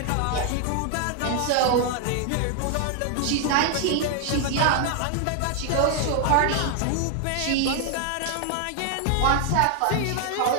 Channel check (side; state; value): both; different; correlation 0.00